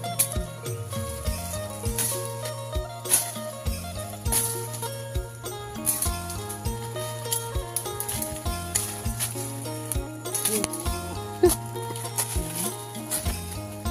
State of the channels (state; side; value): identical; both; correlation 1.00